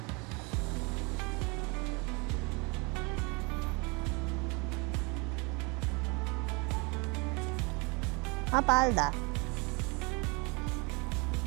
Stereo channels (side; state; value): left; quieter; 29.2 dB